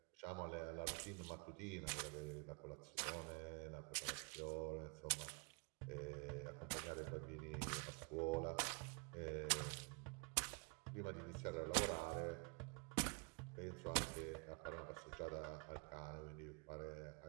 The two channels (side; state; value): left; quieter; 32.0 dB